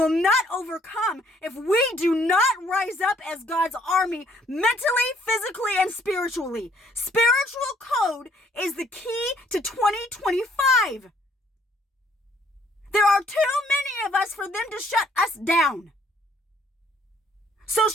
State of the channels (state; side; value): normal; both; correlation 0.64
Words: not overcome if we do not rise up as God's army mentally, physically, and spiritually. Spiritual code is the key to 2025. There are too many of us for them to shut us down.